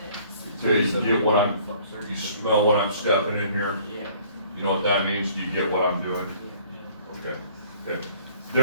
this. Okay, you get what you smell what I'm stepping in here? Yeah. You know what that means? Do you get what I'm doing? Okay, okay.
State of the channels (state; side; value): inverted; both; correlation -0.56